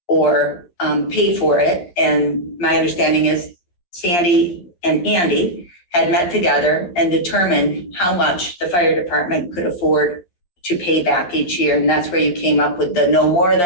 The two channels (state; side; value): late; right; 11 ms